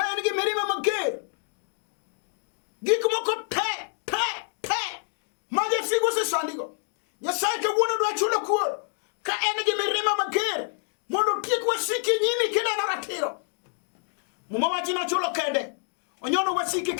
en gi mirima mager. Gik moko te ma jasigo osesandigo. Nyasaye kawuono dwa chulo kur ka en gi mirima mager mondo tiek wasiki nyimi kineno ratiro. Muma wacho no chulo kende. Onyono wasiki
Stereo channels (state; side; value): silent; right; 55 dB below the other